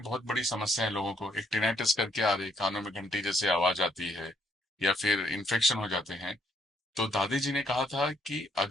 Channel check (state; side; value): normal; both; correlation 0.70